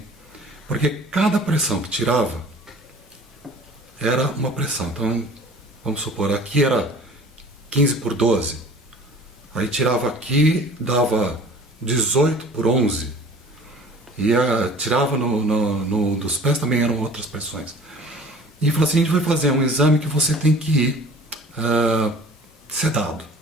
porque cada pressão que tirava era uma pressão. Então, vamos supor, aqui era 15 por 12, aí tirava aqui, dava 18 por 11, e tirava dos pés também eram outras pressões. E falou assim, a gente vai fazer um exame que você tem que ir sedado.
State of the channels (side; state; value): both; normal; correlation 0.46